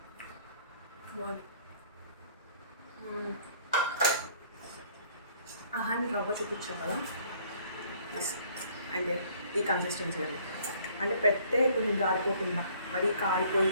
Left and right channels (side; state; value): both; inverted; correlation -0.58